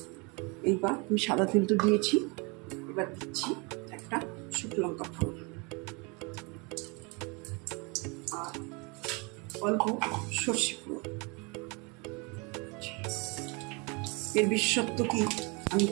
এইবার আমি সাদা তেল তো দিয়েছি, এবার দিচ্ছি একটা শুকনো লঙ্কা ফোড়ন, আর অল্প সর্ষে ফোড়ন। এর বিশেষত্ব কি, আমি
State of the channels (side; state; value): left; quieter; 29.9 dB